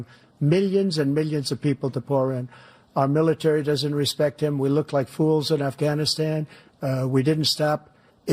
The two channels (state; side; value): identical; both; correlation 1.00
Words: millions and millions of people to pour in. Our military doesn't respect him. We look like fools in Afghanistan. We didn't stop